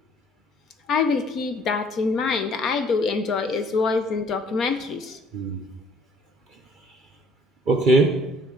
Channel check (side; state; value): both; normal; correlation 0.59